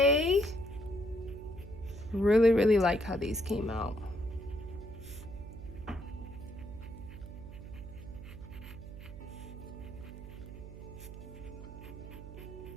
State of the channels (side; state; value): right; noise; hum, 12 dB below the sound